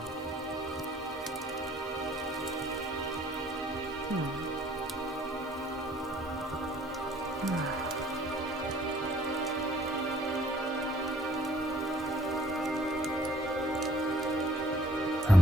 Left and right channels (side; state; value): both; normal; correlation 0.60